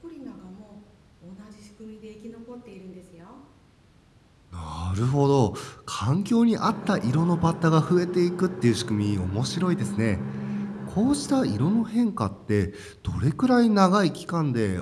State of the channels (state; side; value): identical; both; correlation 1.00